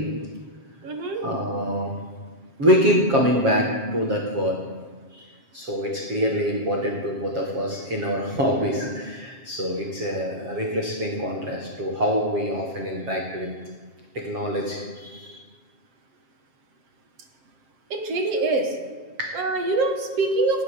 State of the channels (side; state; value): left; late; 7.5 ms